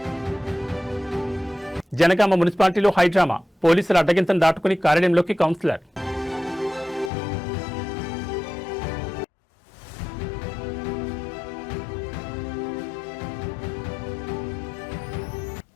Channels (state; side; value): drops out; right; at 7.1 s